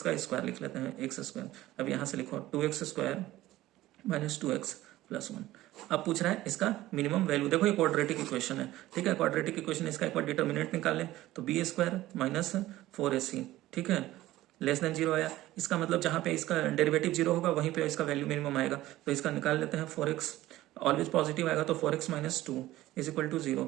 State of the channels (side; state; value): left; quieter; 16.0 dB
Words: का स्क्वायर लिख लेते हैं, x²। अब यहाँ से लिखो 2x² - 2x + 1। अब पूछ रहा है इसका मिनिमम वैल्यू। देखो ये क्वाड्रेटिक इक्वेशन है, ठीक है, क्वाड्रेटिक इक्वेशन, इसका एक बार डिटर्मिनेंट निकाल लें तो b² - 4ac, ठीक है, लेस देन 0 आया। इसका मतलब जहाँ पे इसका डेरिवेटिव 0 होगा वहीं पे इसका वैल्यू मिनिमम आएगा, तो इसका निकाल लेते हैं। 4x ऑलवेज पॉजिटिव आएगा, तो 4x - 2 = 0,